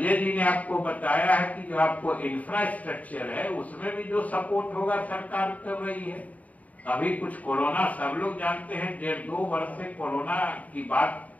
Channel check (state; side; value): late; right; 0.071 ms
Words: जी ने आपको बताया है कि जो आपको इंफ्रास्ट्रक्चर है उसमें भी जो सपोर्ट होगा सरकार कर रही है। अभी कुछ कोरोना सब लोग जानते हैं, 1.5-2 वर्ष से कोरोना की बात